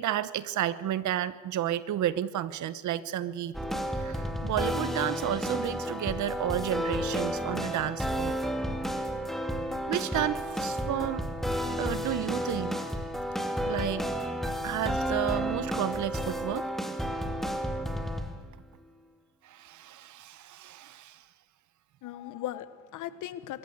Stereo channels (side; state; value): left; quieter; 3.8 dB